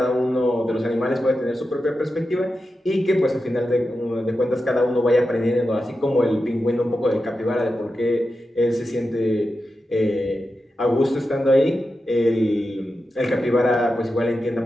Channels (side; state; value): both; normal; correlation 0.90